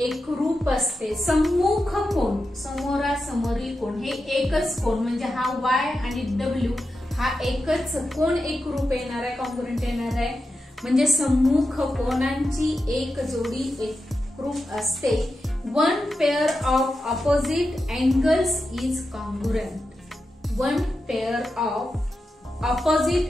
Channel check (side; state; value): both; normal; correlation 0.90